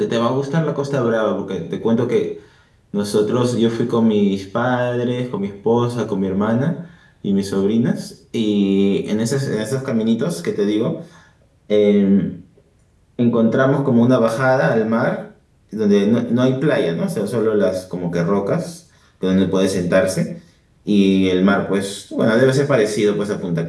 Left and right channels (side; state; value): both; identical; correlation 1.00